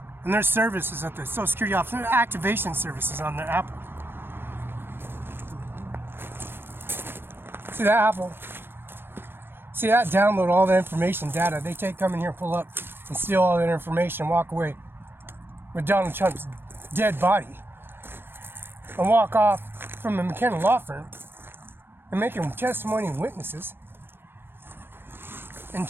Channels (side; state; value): left; late; 0.10 ms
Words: And their services at the Social Security Office, their activation services on their Apple. See that Apple? See that download all the information data. They come in here, pull up, and steal all that information, and walk away with Donald Trump's dead body. And walk off from the McKenna law firm and make them testimony and witnesses in